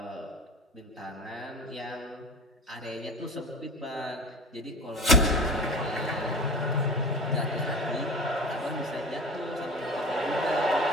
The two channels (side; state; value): both; normal; correlation 0.34